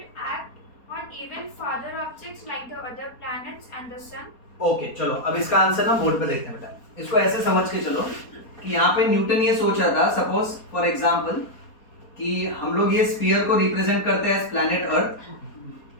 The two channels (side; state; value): right; late; 4.2 ms